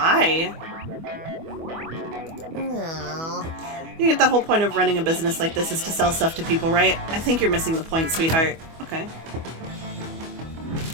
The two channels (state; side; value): late; left; 25 ms